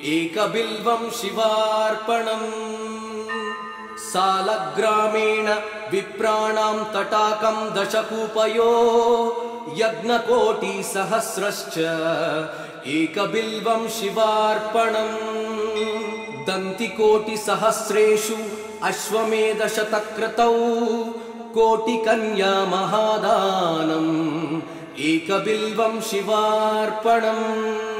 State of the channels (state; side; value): identical; both; correlation 1.00